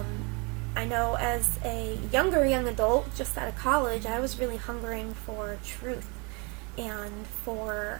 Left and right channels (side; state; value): left; quieter; 31.0 dB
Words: I know as a young adult, just out of college, I was really hungering for truth and